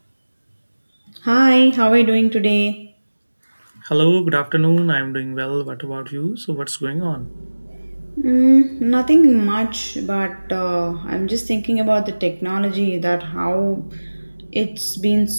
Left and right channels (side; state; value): both; inverted; correlation -1.00